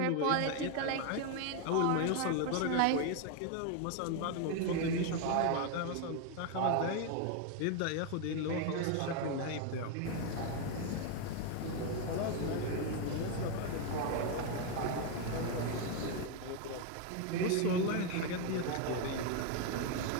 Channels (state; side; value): different; both; correlation 0.01